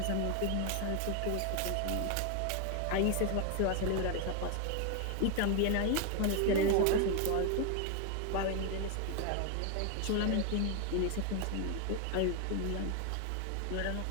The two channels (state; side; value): different; both; correlation 0.01